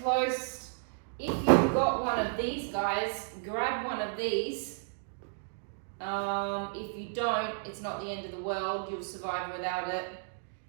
close If you've got one of these guys, grab one of these. If you don't, it's not the end of the world, you'll survive without it.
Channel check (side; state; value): left; silent; digital silence